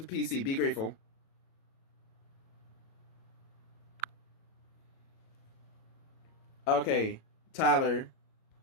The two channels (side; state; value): right; late; 37 ms